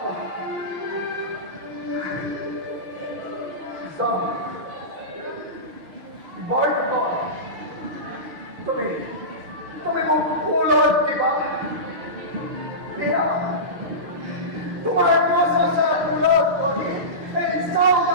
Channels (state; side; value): late; left; 6.4 ms